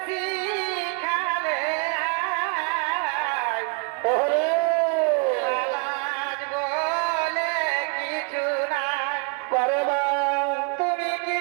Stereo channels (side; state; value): left; quieter; 33.9 dB